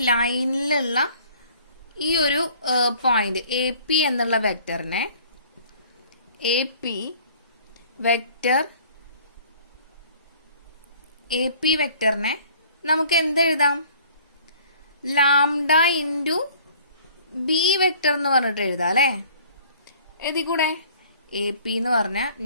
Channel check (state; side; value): inverted; both; correlation -0.53